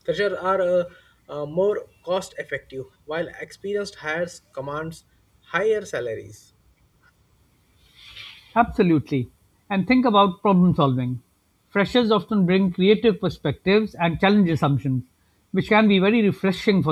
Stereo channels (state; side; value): identical; both; correlation 1.00